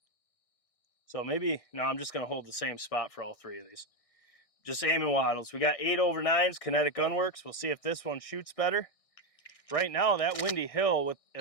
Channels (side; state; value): right; late; 1.6 ms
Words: So maybe, no, I'm just going to hold the same spot for all 3 of these. Just aiming wattles. We got 8/9s Kinetic Gunwerks. We'll see if this one shoots better. Right now, that Windy Hill, with